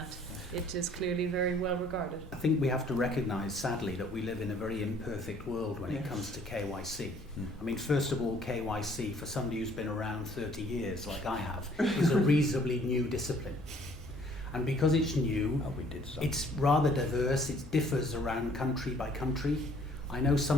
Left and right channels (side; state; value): both; normal; correlation 0.59